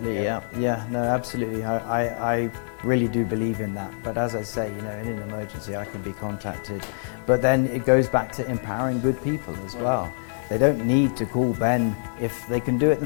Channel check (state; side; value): silent; right; 62 dB below the other